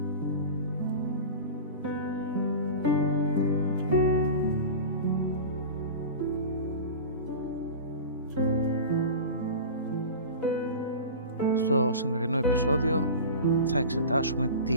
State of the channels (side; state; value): both; inverted; correlation -0.31